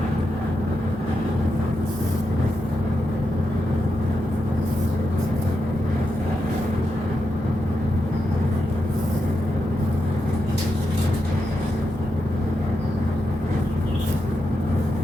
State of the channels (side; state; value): both; normal; correlation 0.86